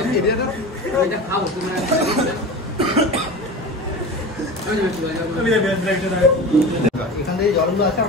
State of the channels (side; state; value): both; normal; correlation 0.31